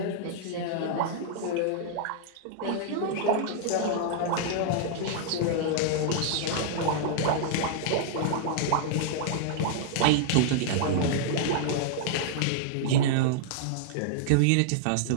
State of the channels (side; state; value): both; different; correlation -0.01